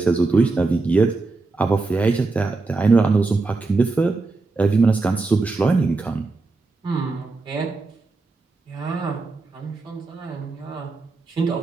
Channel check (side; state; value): left; quieter; 3.7 dB